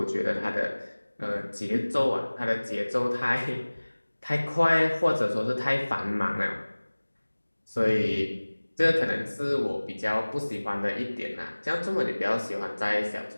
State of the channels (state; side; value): inverted; both; correlation -1.00